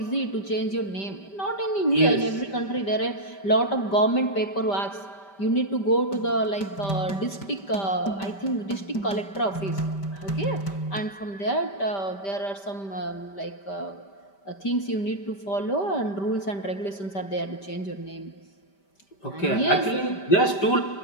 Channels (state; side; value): late; right; 5.1 ms